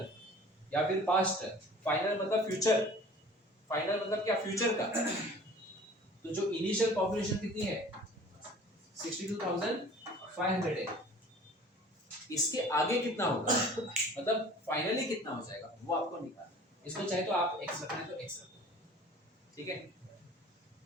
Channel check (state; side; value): normal; both; correlation 0.46